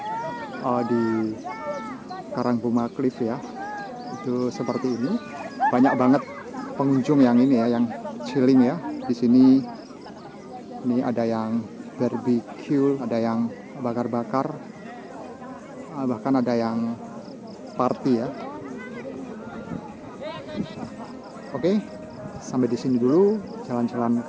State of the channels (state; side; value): identical; both; correlation 1.00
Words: di Karangbuma Cliff ya itu seperti ini. Banyak banget pengunjung yang ini ya, yang chilling ya di sini. Ini ada yang barbecue, ada yang bakar-bakar, bahkan ada yang party ya. Oke, sampai di sini dulu jalan-jalan